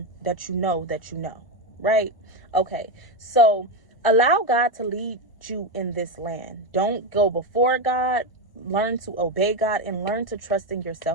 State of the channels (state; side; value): late; right; 1.1 ms